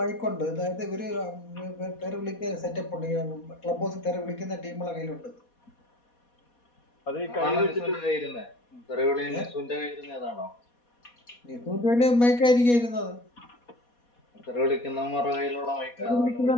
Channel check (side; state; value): right; late; 4.2 ms